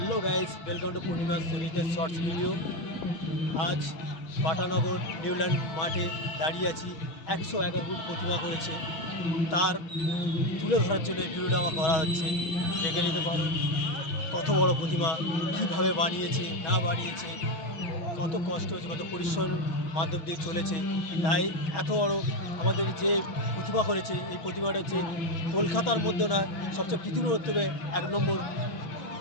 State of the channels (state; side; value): late; right; 6.3 ms